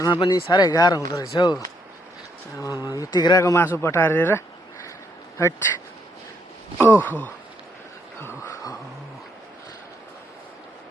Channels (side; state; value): both; normal; correlation 0.73